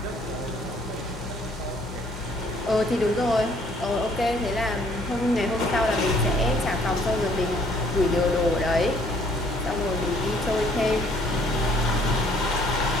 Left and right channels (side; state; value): both; normal; correlation 0.62